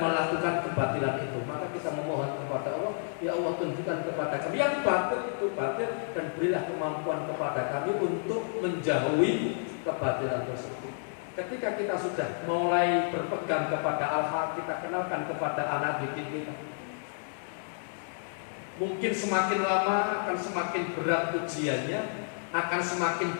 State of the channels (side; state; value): right; silent; digital silence